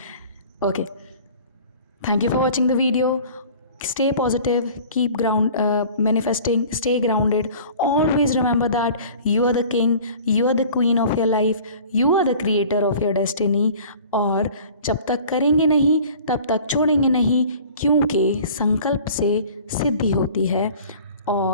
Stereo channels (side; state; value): both; inverted; correlation -0.46